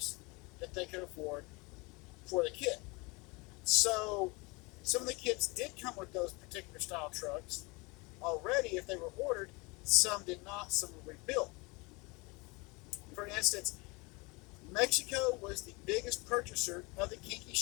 that they could afford for the kit. So some of the kits did come with those particular style trucks already if they were ordered. Some did not, some were rebuilt. For instance, Mexico was the biggest purchaser of the kinki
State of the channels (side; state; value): right; quieter; 26.9 dB